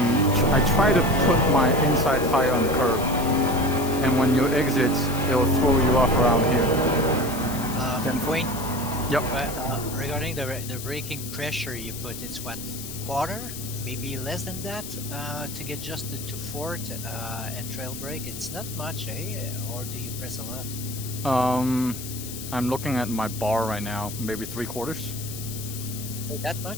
I try to put my inside tire on the curb, and when you exit, it'll throw you off around here. Wayne? Yep. Regarding the braking pressure you put, it's what? Quarter? maybe less than that to get just to fourth and trail brake. It's not much, eh? Or do you press a lot? I'm looking at my bar right now, maybe 3/4. Oh, that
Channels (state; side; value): noise; left; hiss, 10 dB below the sound